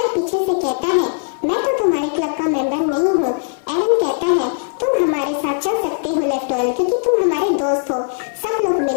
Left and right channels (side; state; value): right; silent; 60 dB below the other